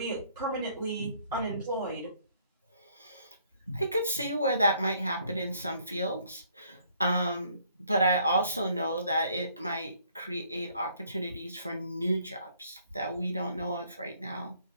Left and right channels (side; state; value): both; inverted; correlation -0.64